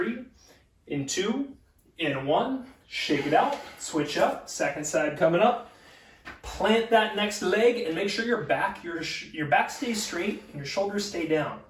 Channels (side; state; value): both; identical; correlation 1.00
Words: in 2, in 1. Shake it out, switch up, second side coming up. Plant that next leg and make sure your back stays straight and your shoulders stay down.